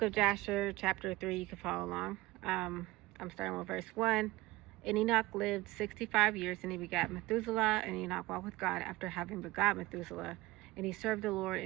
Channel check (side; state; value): left; quieter; 19.5 dB